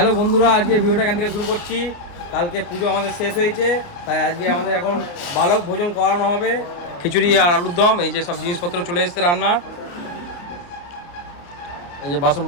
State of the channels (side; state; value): right; late; 29 ms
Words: বন্ধুরা, আজকে ভিডিওটা এখান থেকে শুরু করছি। কালকে পুজো আমাদের শেষ হয়েছে, তাই আজকে আমাদের এখন বালক ভোজন করানো হবে। খিচুড়ি আর আলুর দম, এই যে সব জিনিসপত্র চলে এসছে রান্না। এই যে বাসন